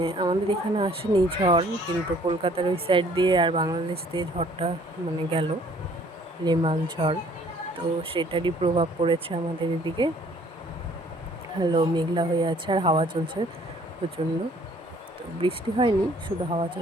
আমাদের এখানে আসেনি ঝড়, কিন্তু কলকাতার ওই সাইড দিয়ে আর বাংলাদেশ দিয়ে ঝড়টা মানে গেল, রেমাল ঝড়। তো সেটারই প্রভাব পড়েছে আমাদের এদিকে। মেঘলা হয়ে আছে আর হাওয়া চলছে প্রচণ্ড। তো বৃষ্টি হয়নি, শুধু হাওয়া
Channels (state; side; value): normal; both; correlation 0.58